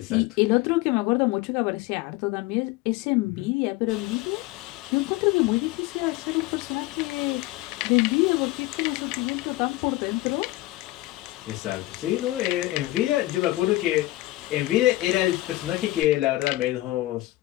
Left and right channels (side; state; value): right; quieter; 18.4 dB